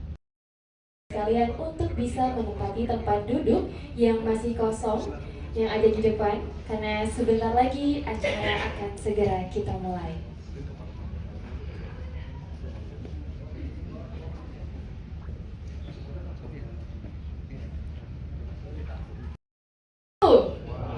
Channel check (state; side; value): identical; both; correlation 1.00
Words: Kalian untuk bisa menempati tempat duduk yang masih kosong yang ada di depan, karena sebentar lagi acara akan segera kita mulai.